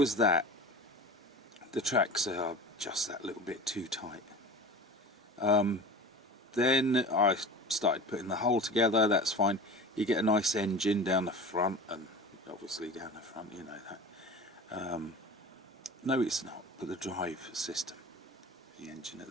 that. The tracks are just that little bit too tight. Then I started putting the hull together. That's fine. You get a nice engine down the front, and obviously down the front, you know that. No, it's not, but the drive system, the engine at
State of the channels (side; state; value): both; normal; correlation 0.35